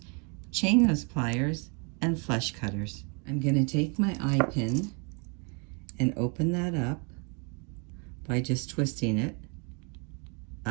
chain nose pliers, and flush cutters. I'm going to take my eye pin and open that up by just twisting it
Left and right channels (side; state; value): left; quieter; 34.4 dB